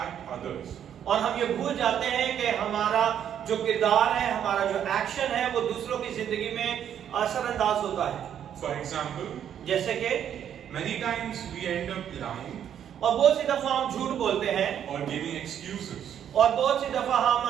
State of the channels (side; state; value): left; quieter; 9.4 dB